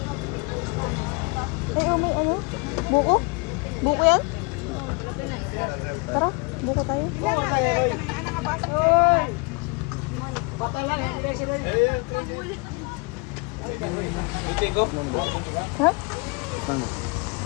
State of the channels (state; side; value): quieter; right; 29.5 dB